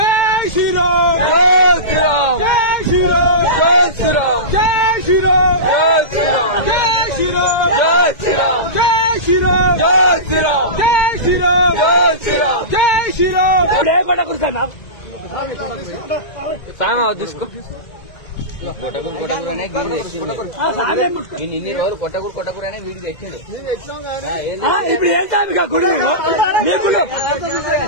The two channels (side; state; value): right; late; 1.9 ms